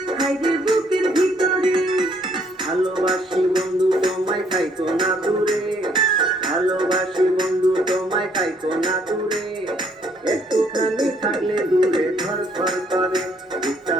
হায়রে বুকের ভিতরে। ভালোবাসি বন্ধু তোমায় থাইকো না দূরে, ভালোবাসি বন্ধু তোমায় থাইকো না দূরে, একটুখানি থাকলে দূরে ধর ধর করে, বুকটা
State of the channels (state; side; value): normal; both; correlation 0.66